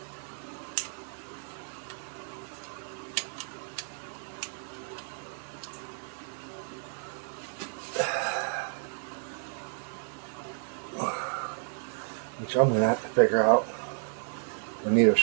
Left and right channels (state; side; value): silent; left; 56 dB below the other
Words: which I'm going to have to figure out. I need a